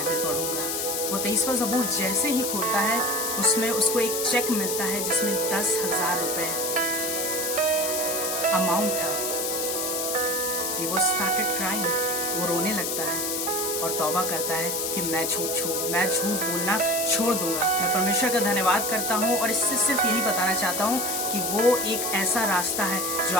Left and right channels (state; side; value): noise; left; hiss, 1 dB below the sound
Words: पढ़ूंगा। वो 23वां ज़बूर जैसे ही खोलता है उसमें उसको एक चेक मिलता है जिसमें 10,000 रुपए अमाउंट था। He was started crying, वो रोने लगता है और तौबा करता है कि मैं झूठ बोलना छोड़ दूंगा। मैं परमेश्वर का धन्यवाद करता हूँ और इससे सिर्फ यही बताना चाहता हूँ कि वो एक ऐसा रास्ता है जो